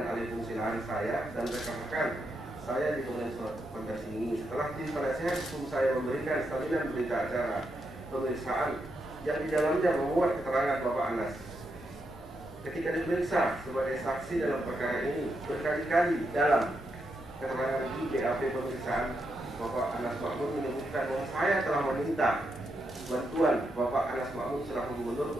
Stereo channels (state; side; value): normal; both; correlation 0.82